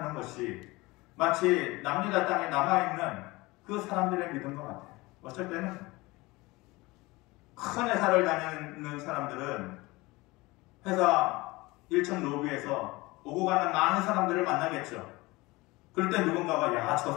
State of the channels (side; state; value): right; quieter; 21.9 dB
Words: 것이 마치 남유다 땅에 남아있는 그 사람들의 믿음과 같아요. 어쩔 때는 큰 회사를 다니는 사람들은 회사 1층 로비에서 오고 가는 많은 사람들을 만나겠죠. 그럴 때 누군가가 야, 저